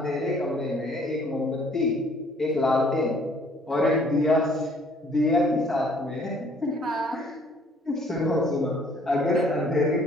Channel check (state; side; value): normal; both; correlation 0.59